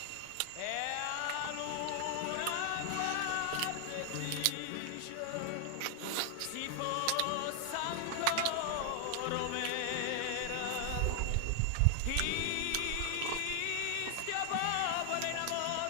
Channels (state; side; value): different; both; correlation 0.00